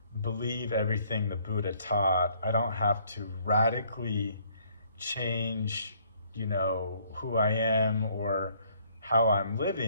believe everything the Buddha taught. I don't have to radically change, who I am or how I'm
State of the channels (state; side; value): inverted; both; correlation -0.64